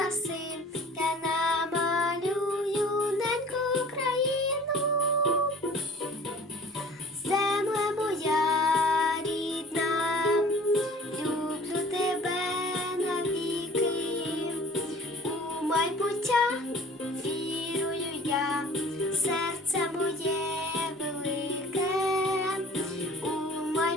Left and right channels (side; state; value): both; normal; correlation 0.47